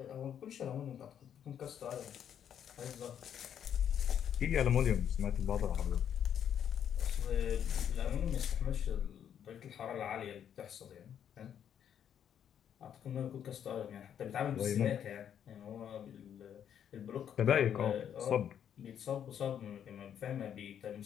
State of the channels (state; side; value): quieter; right; 9.1 dB